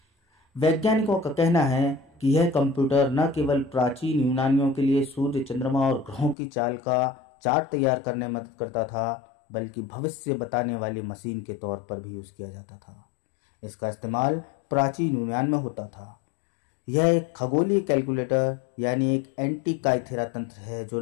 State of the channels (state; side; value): drops out; right; at 6.4 s